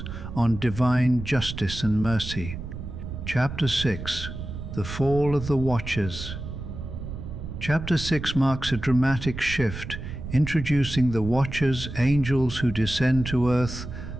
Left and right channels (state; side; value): noise; right; rumble, 8 dB below the sound